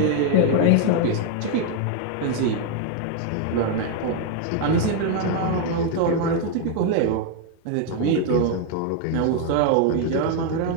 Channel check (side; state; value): both; different; correlation 0.01